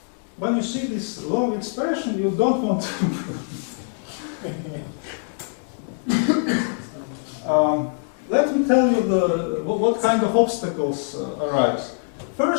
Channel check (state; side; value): silent; right; 63 dB below the other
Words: When you see this long expression, you don't want to prove it. Let me tell you what kind of obstacles arise.